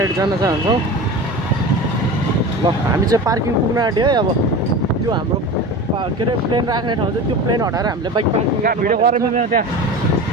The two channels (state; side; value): normal; both; correlation 0.31